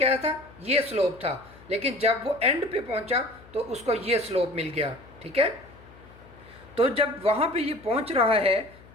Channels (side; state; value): left; noise; hum, 23 dB below the sound